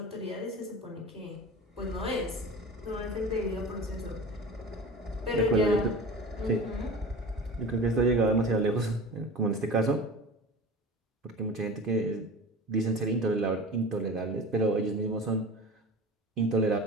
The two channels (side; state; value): both; normal; correlation 0.34